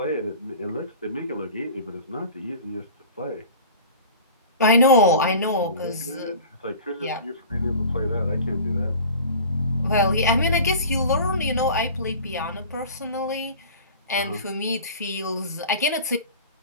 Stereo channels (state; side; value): inverted; both; correlation -0.40